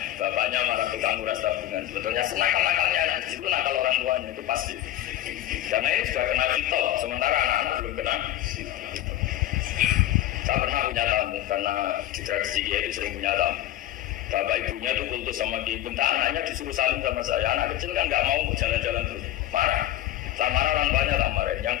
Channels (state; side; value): quieter; right; 13.5 dB